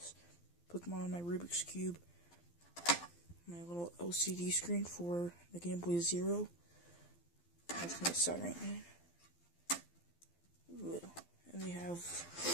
Pokemon, my Rubik's Cube. My little LCD screen for the Game Boy Zero. That's my soldering iron. And we have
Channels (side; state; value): right; late; 12 ms